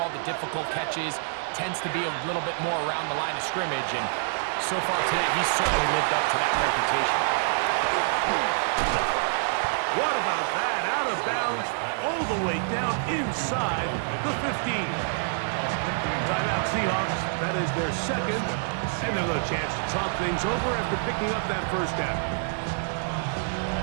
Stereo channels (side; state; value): left; silent; digital silence